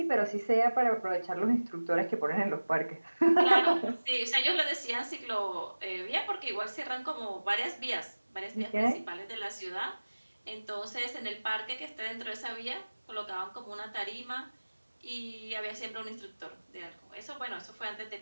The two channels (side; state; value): both; inverted; correlation -1.00